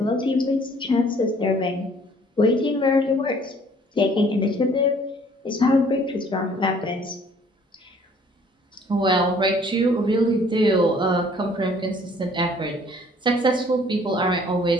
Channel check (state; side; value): normal; both; correlation 0.57